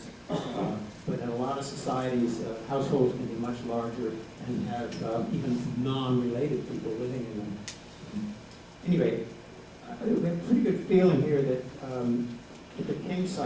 But in a lot of societies, households can be much larger and have even non-related people living in them. Anyway, we have a pretty good feeling here that at the King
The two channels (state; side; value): identical; both; correlation 1.00